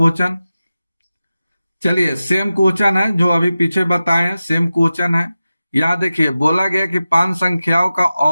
चलिए सेम क्वेश्चन है जो अभी पीछे बताए हैं, सेम क्वेश्चन है। यहाँ देखिए बोला गया कि 5 संख्याओं का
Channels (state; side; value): inverted; both; correlation -0.94